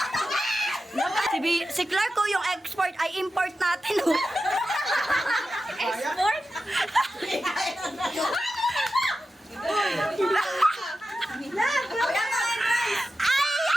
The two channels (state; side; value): normal; both; correlation 0.92